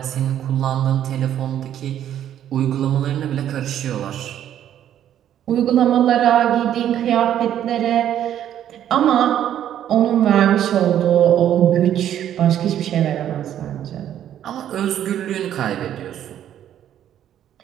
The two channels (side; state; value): left; quieter; 10.8 dB